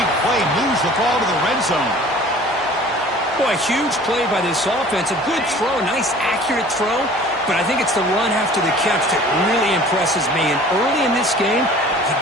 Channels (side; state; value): both; normal; correlation 0.47